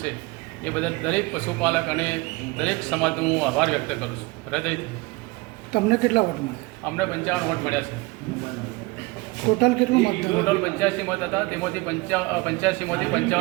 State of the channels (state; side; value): quieter; left; 24.0 dB